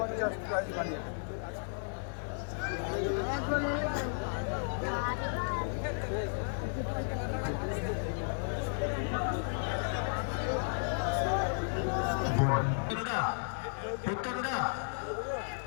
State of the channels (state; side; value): silent; right; 55 dB below the other